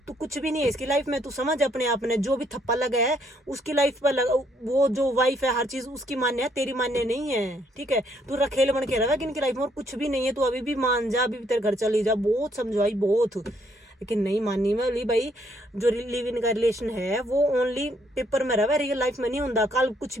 तू कुछ भी नहीं है इसकी लाइफ में, तू समझ अपने आप ने, जो भी थप्पा लगा है उसकी लाइफ पर लगा, वो जो वाइफ है हर चीज उसकी मान्य है, तेरी मान्य नहीं है। ठीक है, तू रखेल बन के रहा है इनकी लाइफ में, और कुछ भी नहीं है। तू अभी भी मान जा, अभी भी तेरे घर चली जा, बहुत समझाई बहुत, लेकिन नहीं मानी। मैं बोली भाई जो लिव इन का रिलेशन है वो ओनली पेपर में रहा, रियल लाइफ में नहीं होता। कल कुछ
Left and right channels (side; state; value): both; normal; correlation 0.69